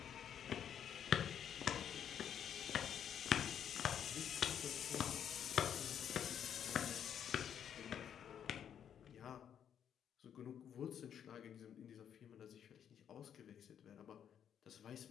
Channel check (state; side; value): quieter; right; 8.9 dB